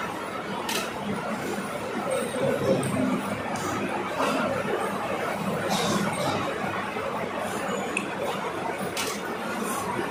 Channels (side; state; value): both; identical; correlation 1.00